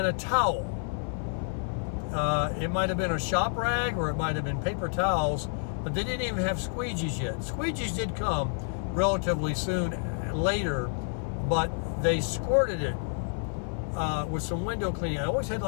a towel. It might have been a shop rag, or it might have been paper towels, but they didn't even have squeegees yet. Squeegees did come relatively soon later, but they squirted it with some window cleaning. I always had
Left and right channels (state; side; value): silent; right; 58 dB below the other